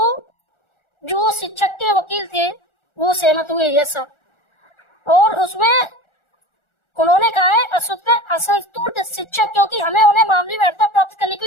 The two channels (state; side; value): late; right; 1.4 ms